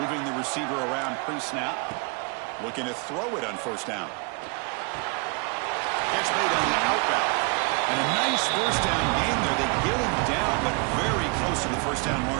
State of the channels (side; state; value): left; quieter; 31.2 dB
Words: the receiver around pre-snap. Looking to throw it on first down. Catch made on the out route. And a nice first down gain there. They get him down, but very close to the first down